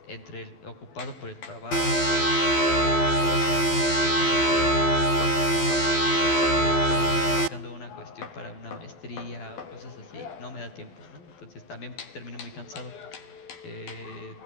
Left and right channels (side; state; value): right; late; 12 ms